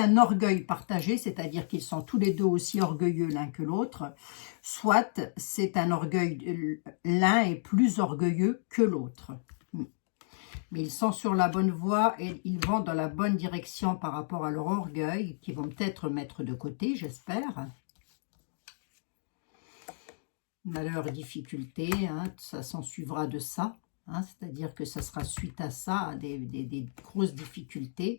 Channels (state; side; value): silent; right; digital silence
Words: orgueil partagé, c'est-à-dire qu'ils sont tous les deux aussi orgueilleux l'un que l'autre, soit c'est un orgueil, l'un est plus orgueilleux que l'autre. Mais ils sont sur la bonne voie et ils vont dans la bonne direction par rapport à leur orgueil, qu'ils vont peut-être mettre de côté, j'espère. Malheur, difficulté, hein, ça s'en suivra de ça. Hein, c'est-à-dire que ça sera suite à ça, à des grosses